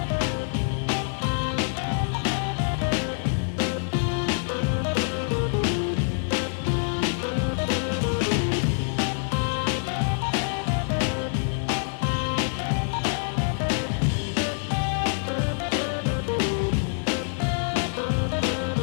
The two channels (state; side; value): silent; right; 61 dB below the other